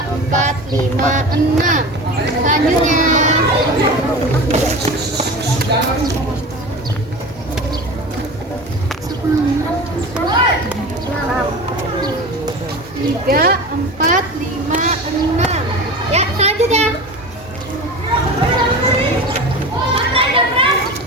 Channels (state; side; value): normal; both; correlation 0.32